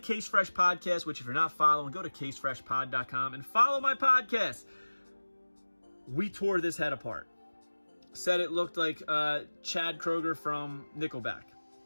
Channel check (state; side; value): inverted; both; correlation -1.00